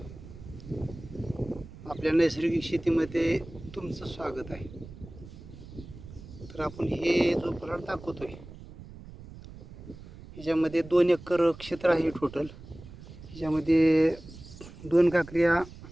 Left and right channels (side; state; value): right; noise; rumble, 16 dB below the sound